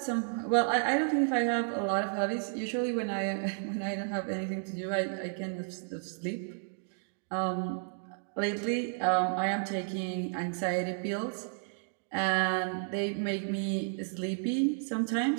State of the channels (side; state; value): left; silent; digital silence